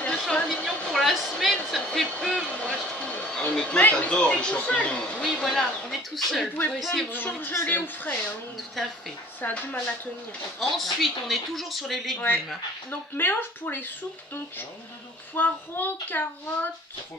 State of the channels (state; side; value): normal; both; correlation 0.49